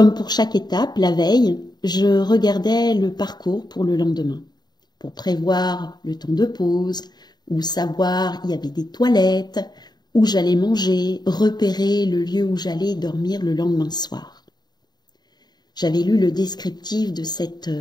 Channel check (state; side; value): late; right; 0.20 ms